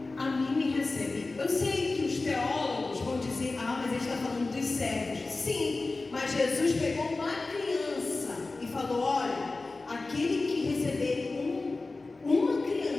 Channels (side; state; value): right; quieter; 3.5 dB